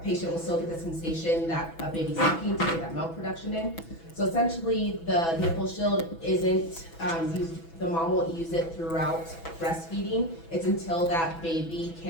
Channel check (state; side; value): late; right; 6.1 ms